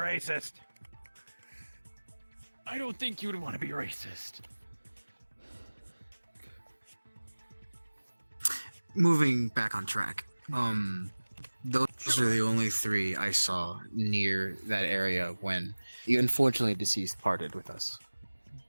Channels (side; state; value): both; inverted; correlation -1.00